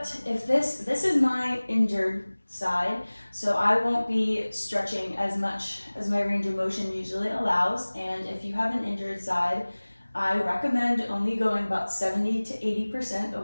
If this is my injured side, so I won't be stretching as much as my range of motion usually allows. And if you have an injured side, I recommend only going about 70 to 80%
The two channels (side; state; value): both; inverted; correlation -1.00